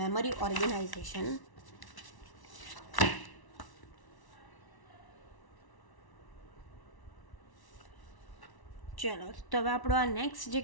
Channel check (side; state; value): right; late; 1.1 ms